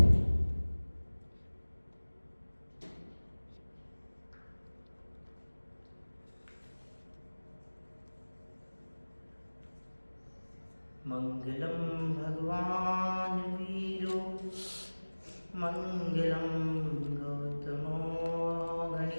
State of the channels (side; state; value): both; inverted; correlation -1.00